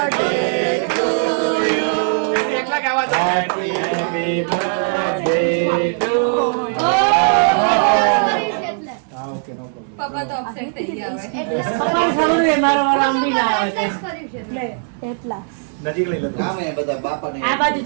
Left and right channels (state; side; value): silent; left; digital silence